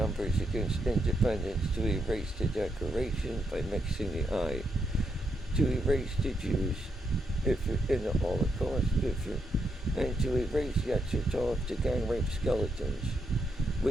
against independence to erase the Declaration by mixing the eye, to erase the Jews in the Holocaust, and to erase Yetzirah to gang rape skeletons,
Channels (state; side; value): normal; both; correlation 0.80